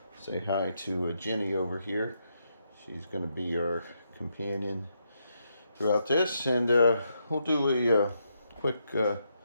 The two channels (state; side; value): inverted; both; correlation -0.80